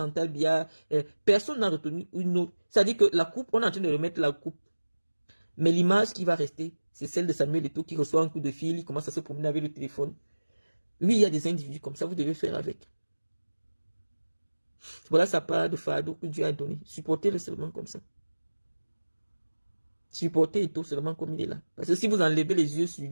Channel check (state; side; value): inverted; both; correlation -1.00